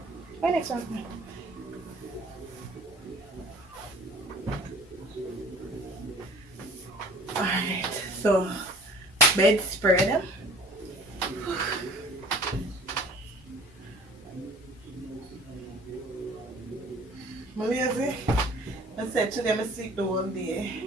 My next one. Alright, so bedspread. I'm lazy. I said today I'm sleep the whole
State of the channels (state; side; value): normal; both; correlation 0.49